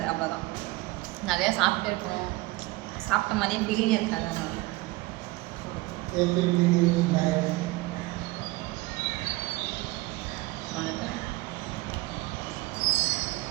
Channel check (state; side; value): quieter; left; 20.8 dB